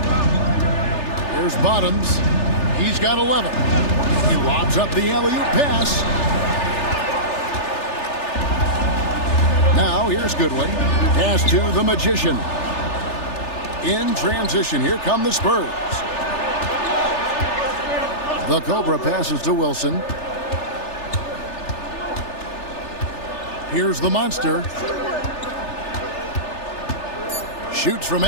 Here's Bottoms. He's got 11. He lobs up the alley-oop pass. Now here's Goodwin. Pass to the Magician. In transition, here come the Spurs. The Cobra passes to Wilson. Here's the Monster. Shoots from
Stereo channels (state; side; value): late; right; 3.4 ms